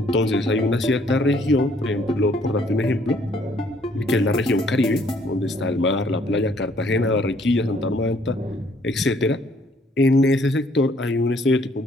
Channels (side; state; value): both; normal; correlation 0.64